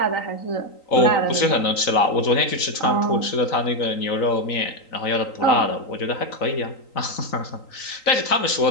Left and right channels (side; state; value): right; late; 3.9 ms